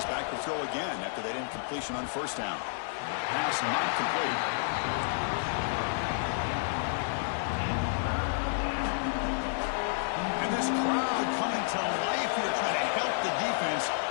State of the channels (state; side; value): silent; right; digital silence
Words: back to throw again after that incompletion on first down. Pass not complete. This crowd coming to life here trying to help the defense